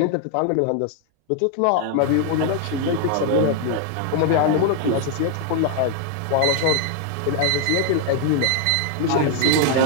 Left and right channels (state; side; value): different; both; correlation 0.00